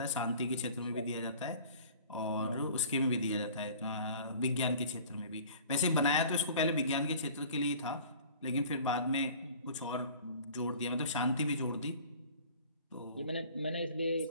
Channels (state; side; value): inverted; both; correlation -0.46